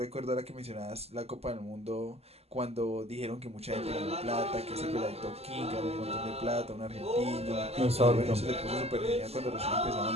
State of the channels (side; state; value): left; late; 0.29 ms